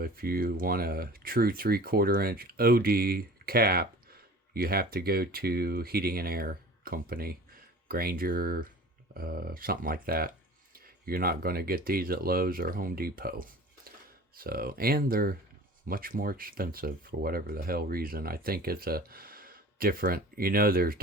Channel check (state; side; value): normal; both; correlation 0.42